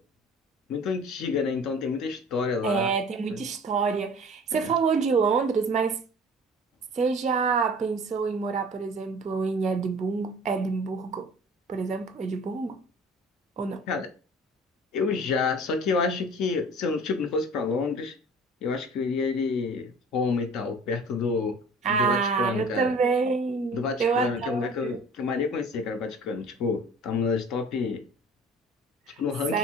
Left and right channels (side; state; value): both; normal; correlation 0.45